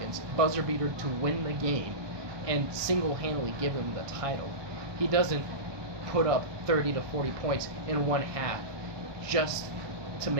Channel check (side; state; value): left; late; 1.2 ms